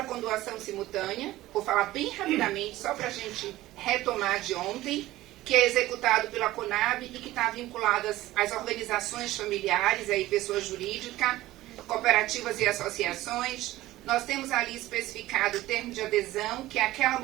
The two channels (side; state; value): left; quieter; 16.4 dB